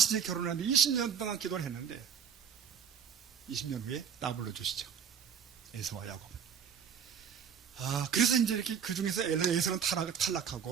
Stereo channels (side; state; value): left; quieter; 7.6 dB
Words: 결혼을 했는데 20년 동안 기도를 했는데 20년 후에 따블로 주시죠. 에서와 야곱은. 그래서 이제 이렇게 그 중에서 에서는